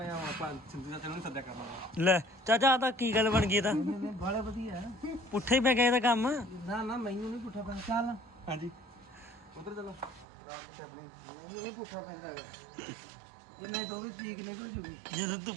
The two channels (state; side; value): drops out; left; at 10.2 s